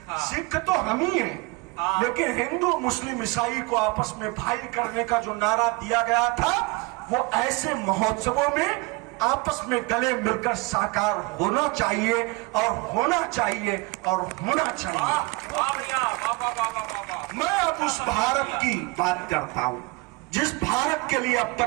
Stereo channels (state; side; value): quieter; left; 25.5 dB